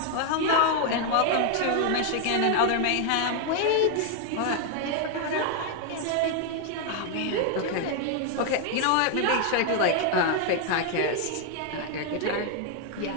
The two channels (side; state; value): both; different; correlation 0.00